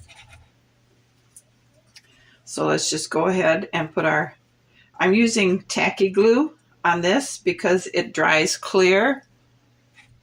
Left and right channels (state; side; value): identical; both; correlation 1.00